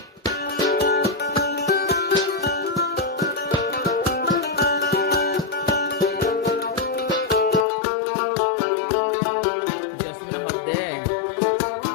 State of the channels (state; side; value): drops out; right; at 7.7 s